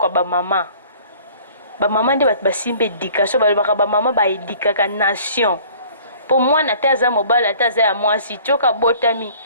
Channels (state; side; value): inverted; both; correlation -0.51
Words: ya bamama nde bato basimba éducation balobaka bamama baedikaka nation mpo mwana ate aza mobali ate aza ya mwasi tioka botami